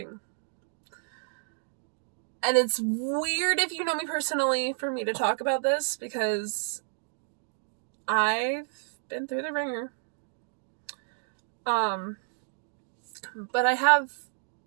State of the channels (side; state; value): left; silent; digital silence